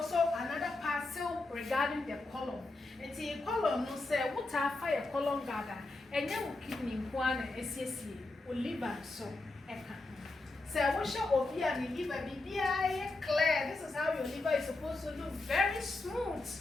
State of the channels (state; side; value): quieter; right; 3.1 dB